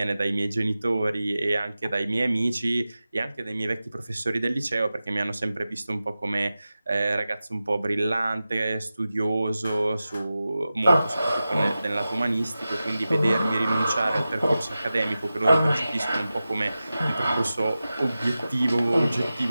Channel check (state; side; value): inverted; both; correlation -0.94